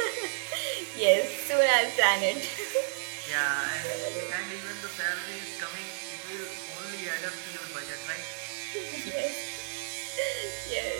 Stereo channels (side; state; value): left; silent; digital silence